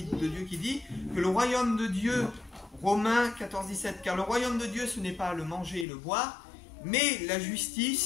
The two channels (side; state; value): right; drops out; at 5.9 s